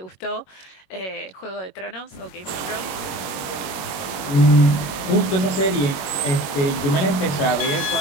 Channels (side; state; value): right; late; 21 ms